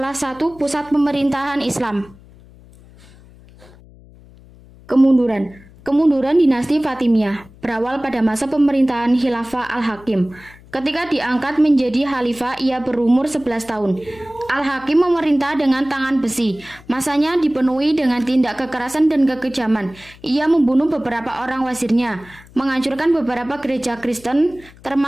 satu pusat pemerintahan Islam. Kemunduran dinasti Fatimiyah berawal pada masa pemerintahan Khilafah Al-Hakim. Ketika diangkat menjadi khalifah, ia berumur 11 tahun. Al-Hakim memerintah dengan tangan besi. Masanya dipenuhi dengan tindak kekerasan dan kekejaman. Ia membunuh beberapa orang wazirnya, menghancurkan beberapa gereja Kristen,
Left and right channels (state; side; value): noise; left; hum, 23 dB below the sound